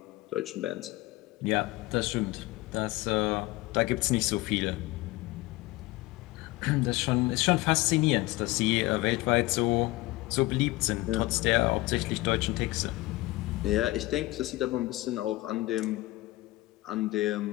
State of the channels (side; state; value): right; quieter; 19.8 dB